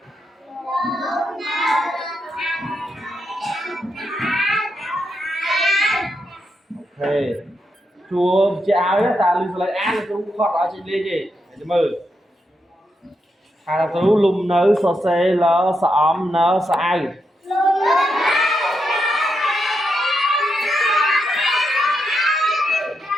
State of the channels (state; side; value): normal; both; correlation 0.83